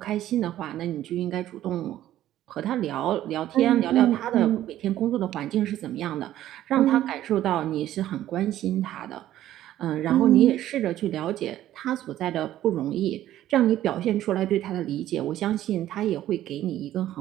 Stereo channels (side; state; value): left; quieter; 13.1 dB